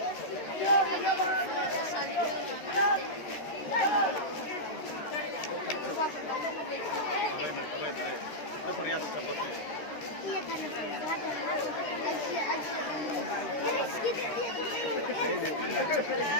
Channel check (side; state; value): right; late; 13 ms